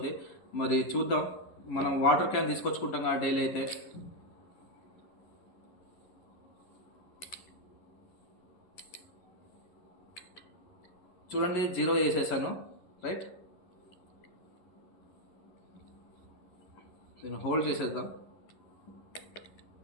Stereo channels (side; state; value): right; late; 11 ms